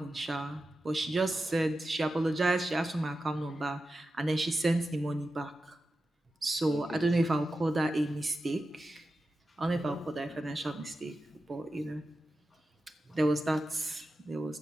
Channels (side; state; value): both; normal; correlation 0.92